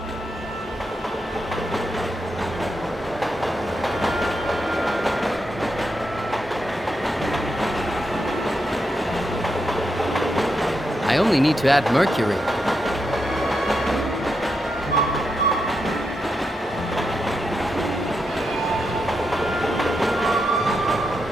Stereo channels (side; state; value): both; normal; correlation 0.84